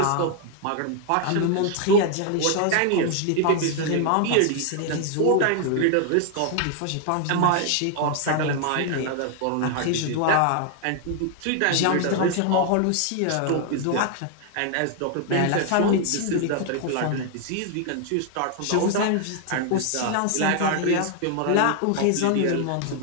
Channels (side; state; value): both; different; correlation 0.00